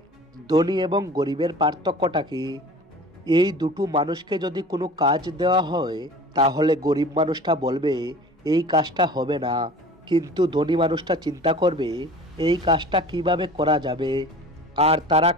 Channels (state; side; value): normal; both; correlation 0.41